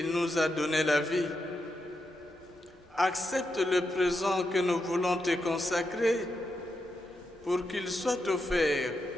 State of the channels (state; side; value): normal; both; correlation 0.85